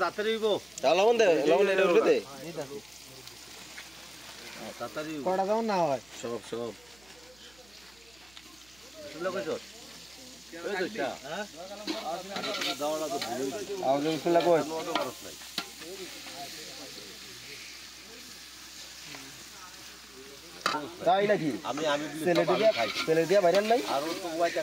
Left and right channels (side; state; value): right; noise; hum, 28 dB below the sound